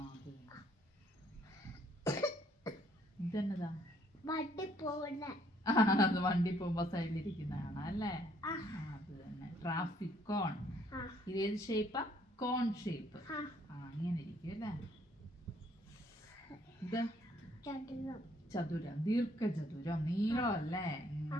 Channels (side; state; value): both; normal; correlation 0.65